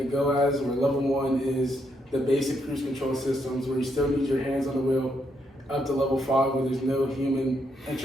go as, where level 1 is the basic cruise control systems, where you still need your hands on the wheel, up to level 5, where there's no human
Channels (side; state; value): both; normal; correlation 0.77